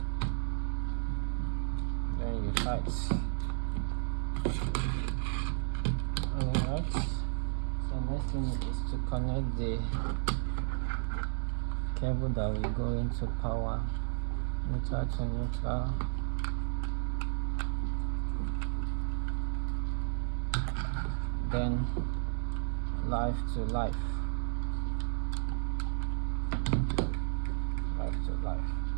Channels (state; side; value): silent; left; digital silence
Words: then you tight. Alright, so next thing is to connect the cable that will go into power, neutral to neutral, then life to life, life to life.